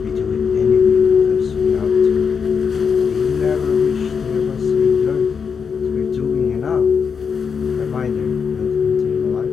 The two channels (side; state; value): right; quieter; 6.2 dB